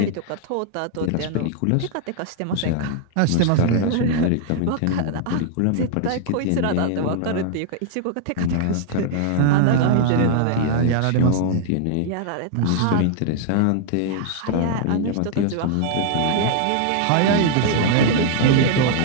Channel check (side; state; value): both; different; correlation -0.01